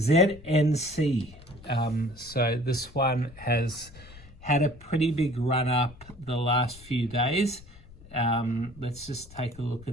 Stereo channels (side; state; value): left; noise; rumble, 20 dB below the sound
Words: so this one has had a pretty big run up the last few days. Let's just take a look